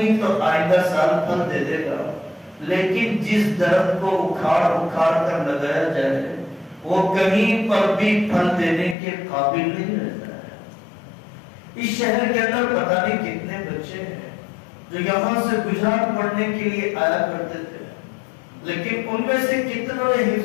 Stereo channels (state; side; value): drops out; right; at 9.0 s